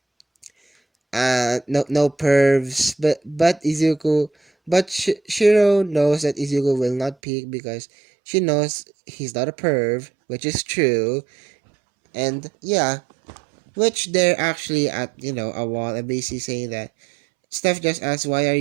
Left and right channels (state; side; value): drops out; left; at 7.2 s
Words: no pervs, but Izuku, but Shiro knows that Izuku will not peek because she knows he's not a perv, which is true. And yeah, which they're actually at, a wall and basically saying that Steph just asks, why are